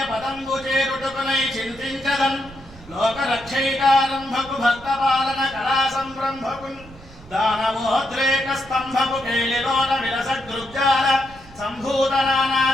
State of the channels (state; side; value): noise; right; rumble, 20 dB below the sound